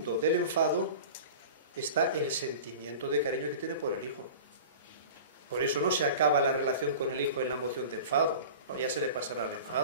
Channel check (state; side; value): inverted; both; correlation -0.37